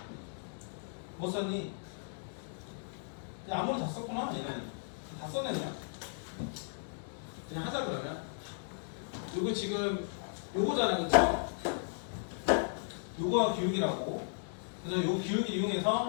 뭐 썼니? 그냥 아무리 다 썼구나. 얘는 다 썼네 그냥. 그냥 하자 그러면. 요거 지금 요거잖아, 그쵸? 요거가 기울기라고. 그래서 요 기울기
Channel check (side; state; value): right; silent; digital silence